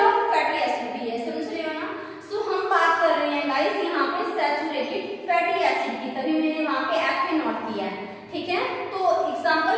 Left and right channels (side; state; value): both; identical; correlation 1.00